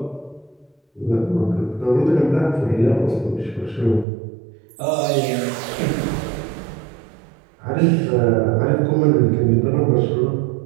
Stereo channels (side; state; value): left; drops out; at 4.0 s